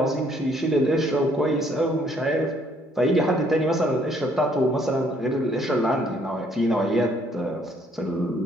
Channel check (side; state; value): both; normal; correlation 0.65